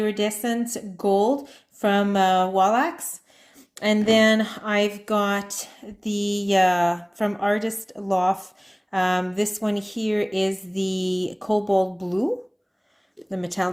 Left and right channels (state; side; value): identical; both; correlation 1.00